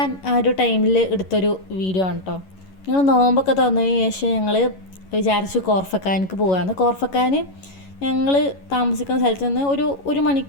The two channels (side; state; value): right; late; 11 ms